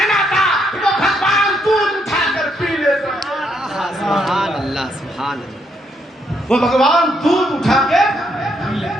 تھا وہ بھگوان دودھ اٹھا کر پی لیتا، سبحان اللہ سبحان اللہ۔ وہ بھگوان دودھ اٹھا کے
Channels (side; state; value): both; normal; correlation 0.74